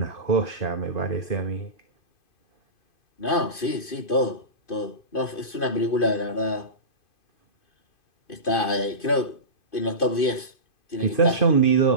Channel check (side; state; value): right; late; 2.5 ms